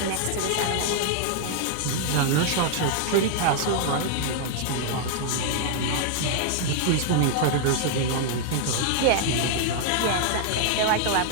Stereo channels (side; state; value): both; different; correlation -0.01